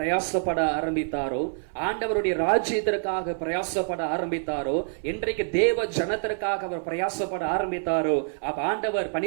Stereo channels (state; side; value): silent; left; 58 dB below the other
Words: ஆரம்பித்தாரோ, ஆண்டவருடைய ராஜ்யத்திற்காக பிரயாசப்பட ஆரம்பித்தாரோ, என்றைக்கு தேவ ஜனத்திற்காக அவர் பிரயாசப்பட ஆரம்பித்தாரோ, அப்ப ஆண்டவர்